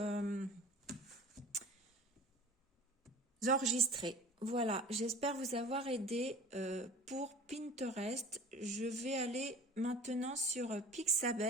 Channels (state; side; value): normal; both; correlation 0.41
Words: enregistrez. Voilà, j'espère vous avoir aidé pour Pinterest. Je vais aller maintenant sur